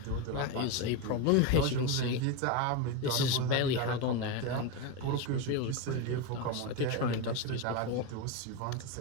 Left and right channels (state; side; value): different; both; correlation 0.04